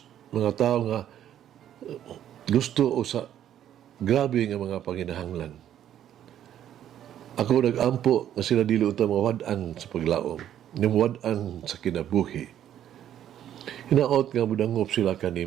mga tao nga gusto o sa grabe nga mga panginahanglan. Ako nag-ampo nga sila dili uta mawad-an sa paglaom, mawad-an sa kinabuhi. Hinaot nga mudangop sila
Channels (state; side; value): quieter; left; 10.8 dB